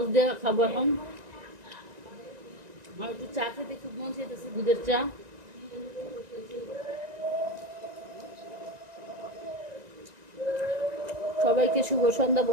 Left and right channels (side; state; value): left; late; 1.9 ms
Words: দিয়ে খাবো এখন। আর একটু চা খেতে খুব মন চাইতেছে, দুধের চা। সবাইকে শুভ সন্ধ্যা